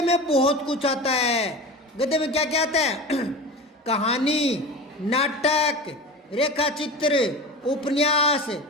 में बहुत कुछ आता है। गद्य में क्या क्या आता है? कहानी, नाटक, रेखा चित्र, उपन्यास,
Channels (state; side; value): normal; both; correlation 0.31